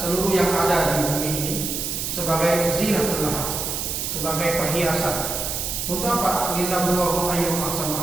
yang ada di bumi ini sebagai zinatan laha, sebagai perhiasan. Untuk apa? Linabluwahum ayyuhum ahsanu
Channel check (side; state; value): right; noise; hiss, 3 dB below the sound